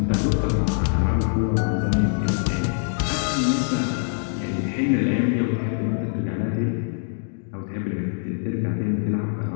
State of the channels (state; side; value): silent; right; 62 dB below the other